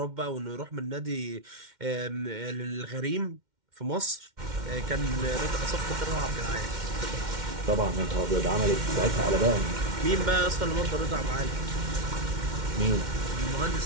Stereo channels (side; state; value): left; late; 2.1 ms